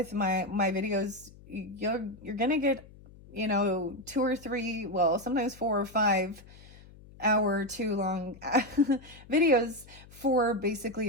my videos, you're gonna get, 2 or 3, well, sometimes 4 or 5 hour too long videos for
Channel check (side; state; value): left; noise; hum, 21 dB below the sound